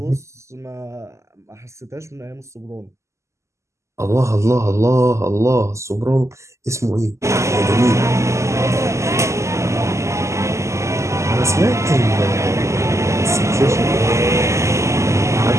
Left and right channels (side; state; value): left; late; 0.14 ms